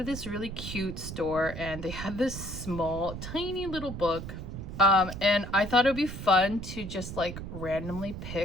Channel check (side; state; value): right; noise; rumble, 8 dB below the sound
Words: this really cute store and they had this small tiny little book, and I thought it would be fun to just like randomly